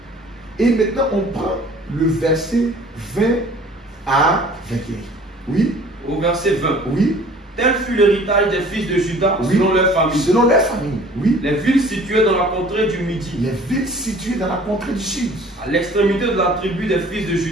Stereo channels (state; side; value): normal; both; correlation 0.50